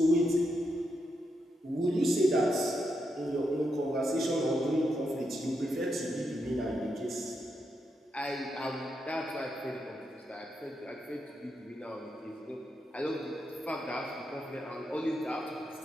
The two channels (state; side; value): normal; both; correlation 0.83